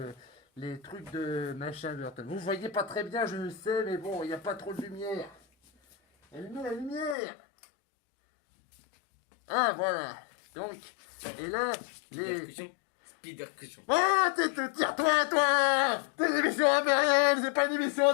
les trucs de machin Burton. Vous voyez pas très bien, je le sais, mais bon, il n'y a pas trop de lumière. Allumez la lumière. Ah, voilà. Donc, et là, Ah, tire-toi, toi! C'est une émission impériale, c'est pas une émission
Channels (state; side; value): drops out; right; at 7.2 s